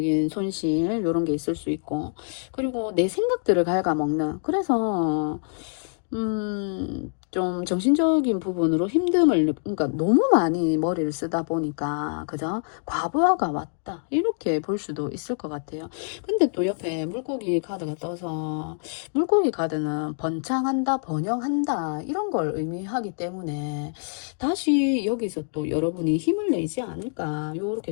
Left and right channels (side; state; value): right; silent; digital silence